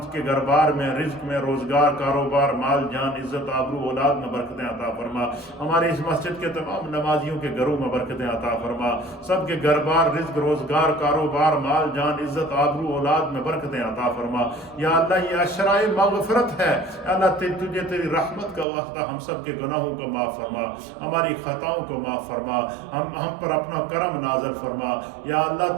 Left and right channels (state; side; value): drops out; left; at 18.7 s